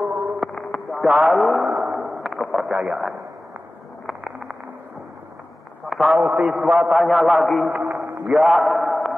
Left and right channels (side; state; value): both; normal; correlation 0.97